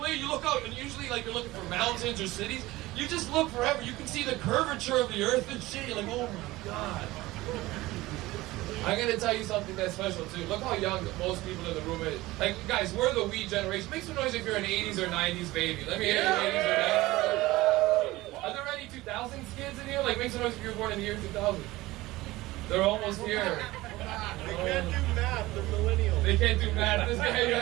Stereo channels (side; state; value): left; quieter; 18.8 dB